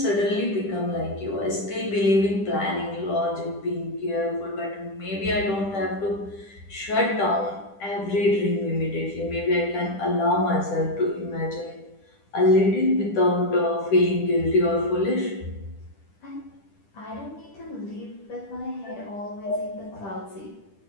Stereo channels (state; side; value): late; right; 10 ms